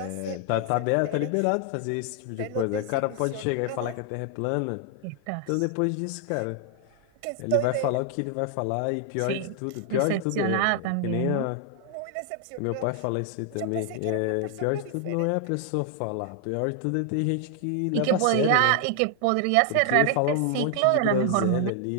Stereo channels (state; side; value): different; both; correlation 0.00